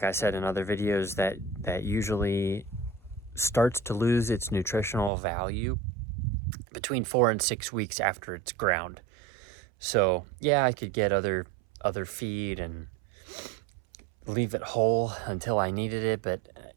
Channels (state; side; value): drops out; left; at 5.1 s